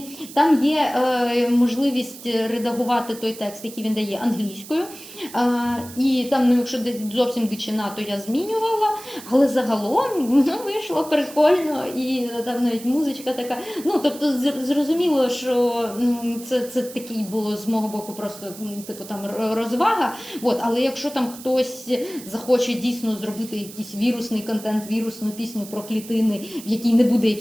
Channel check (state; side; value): noise; right; hiss, 16 dB below the sound